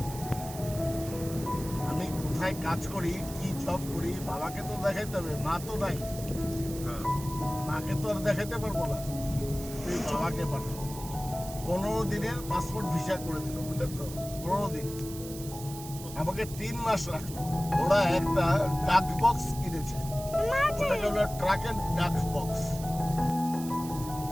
আমি কোথায় কাজ করি, কি জব করি, বাবাকে তো দেখাইতে হবে, মা তো নাই, মাকে তো আর দেখাইতে পারবো না, তুই বাবাকে পাঠা। 15 দিনের পাসপোর্ট ভিসা করে দিল, বুঝলেন তো? 15 দিন আমাকে 3 মাস রাখলো। ওরা একটা ডাক বক্স কিনেছে, ওটাকে বলে ট্রাক এন্ড ডাক বক্স।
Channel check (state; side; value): noise; right; hiss, 13 dB below the sound